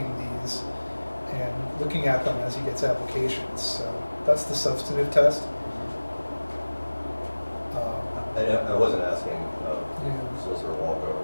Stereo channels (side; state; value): both; inverted; correlation -1.00